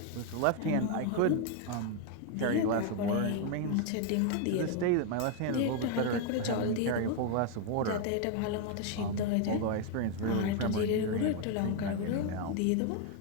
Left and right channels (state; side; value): different; both; correlation 0.01